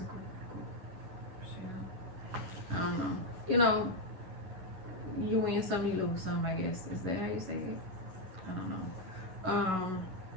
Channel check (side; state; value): left; late; 11 ms